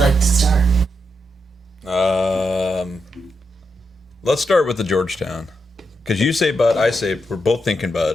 to start? Let's start with the Georgetown. Because you say Bud, I say we're both thinking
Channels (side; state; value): both; normal; correlation 0.84